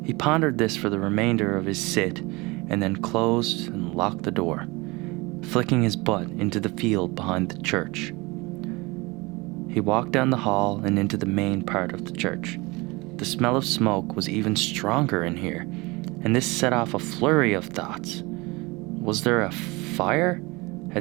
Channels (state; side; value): quieter; left; 24.4 dB